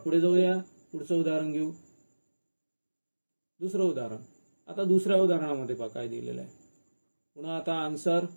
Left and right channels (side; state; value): both; inverted; correlation -1.00